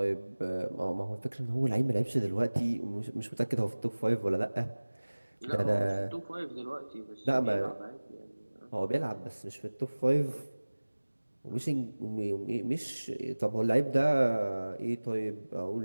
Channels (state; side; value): inverted; both; correlation -1.00